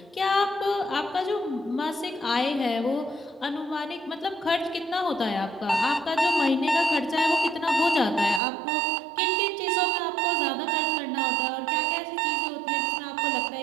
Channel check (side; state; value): left; drops out; at 8.4 s